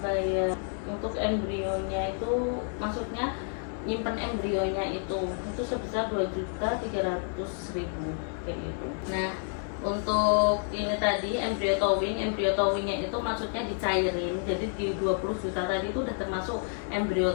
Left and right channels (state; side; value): silent; right; 58 dB below the other